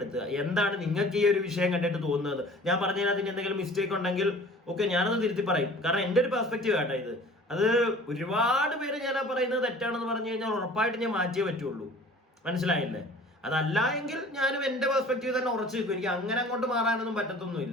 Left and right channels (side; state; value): both; normal; correlation 0.46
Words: എന്താണ് നിങ്ങൾക്ക് ഈ ഒരു വിഷയം കണ്ടിട്ട് തോന്നുന്നത്? ഞാൻ പറഞ്ഞതിനകത്ത് എന്തെങ്കിലും മിസ്റ്റേക്ക് ഉണ്ടെങ്കിൽ ഓക്കെ, ഞാനത് തിരുത്തി പറയും. കാരണം എൻ്റെ ഒരു പെർസ്പെക്റ്റീവ് ആട്ടോ ഇത്. അത് ഒരുപാട് പേര് ഞാൻ പറയുന്നത് തെറ്റാണെന്ന് പറഞ്ഞു കഴിഞ്ഞാൽ ഉറപ്പായിട്ട് ഞാൻ മാറ്റിയേ പറ്റുള്ളൂ, മനസ്സിലായില്ലേ? അതല്ല എങ്കിൽ ഞാനും എൻ്റെ പെർസ്പെക്റ്റീവ് തന്നെ ഉറച്ചു നിൽക്കും. എനിക്ക് അങ്ങനെ അങ്ങോട്ട് മാറാനൊന്നും